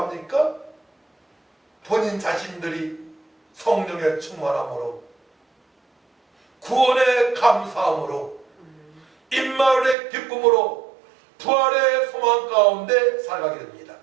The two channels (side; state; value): left; drops out; at 10.0 s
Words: 본인 자신들이 성령의 충만함으로, 구원의 감사함으로, 임마을의 기쁨으로, 부활의 소망 가운데 살아가게 됩니다.